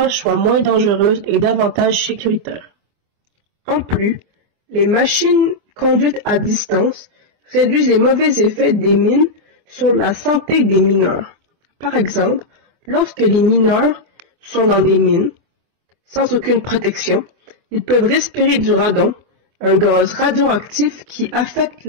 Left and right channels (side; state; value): left; late; 24 ms